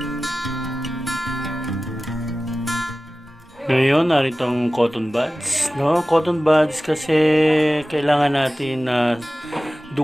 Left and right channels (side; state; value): both; normal; correlation 0.96